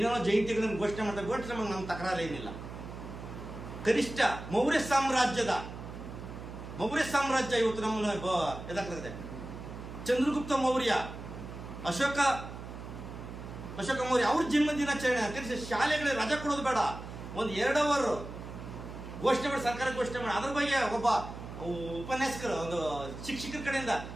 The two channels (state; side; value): noise; right; hum, 11 dB below the sound